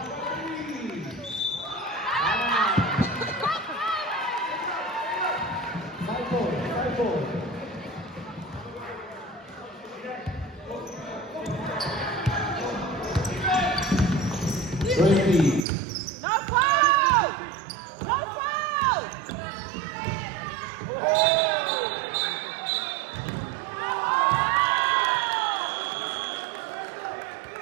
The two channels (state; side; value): drops out; left; at 15.7 s